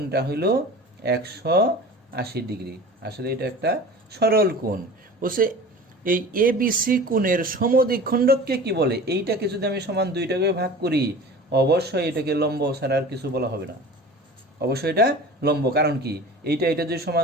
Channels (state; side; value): normal; both; correlation 0.38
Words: হলো 180 ডিগ্রি। আসলে এটা একটা সরল কোণ। বলছে এই এ বি সি কোণের সমদ্বিখণ্ডককে কি বলে? এইটাকে যদি আমি সমান 2টাকে ভাগ করি, অবশ্যই এটাকে লম্ব ছাড়া আর কিছু বলা হবে না। অবশ্যই এটা লম্ব। কারণ কি? এইটা যদি